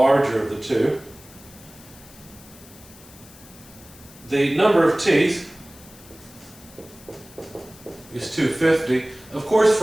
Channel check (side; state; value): left; noise; hiss, 21 dB below the sound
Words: of the two. The number of teeth is 250. Of course,